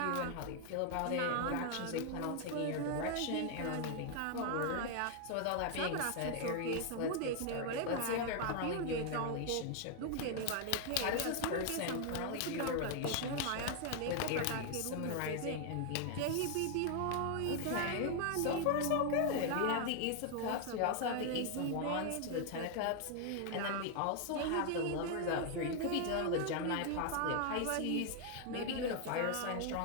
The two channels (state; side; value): different; both; correlation 0.00